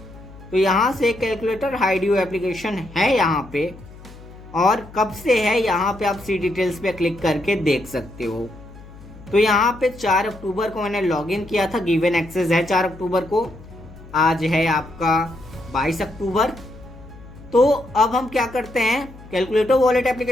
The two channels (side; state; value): left; noise; hum, 19 dB below the sound